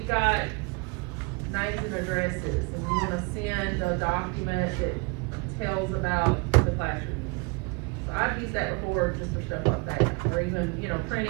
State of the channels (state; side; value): quieter; left; 28.3 dB